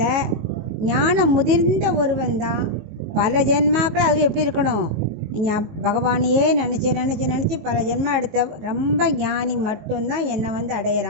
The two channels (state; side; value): late; left; 19 ms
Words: ஞானம் முதிர்ந்த ஒருவன் தான் பல ஜென்மாக்கள் அது எப்படி இருக்கணும், நீங்கள் பகவானையே நினச்சி பல ஜென்மம் எடுத்த ரொம்ப ஞானி மட்டும்தான் என்னை